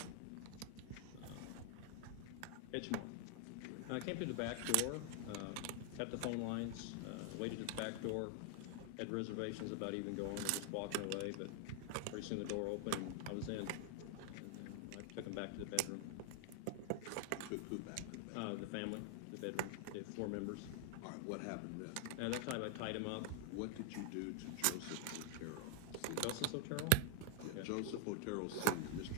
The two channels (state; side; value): different; both; correlation 0.00